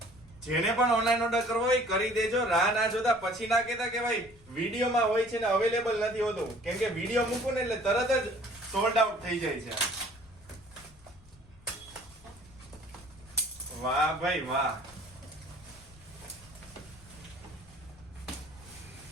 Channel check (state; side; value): noise; left; rumble, 25 dB below the sound